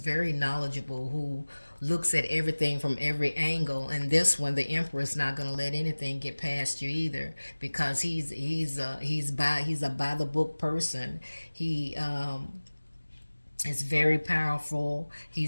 knowledgeable, who looks at everything from every angle. And this one, the emperor's not going to let anything get past you either, because he's a by the book person. He is very powerful.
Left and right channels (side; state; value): both; inverted; correlation -1.00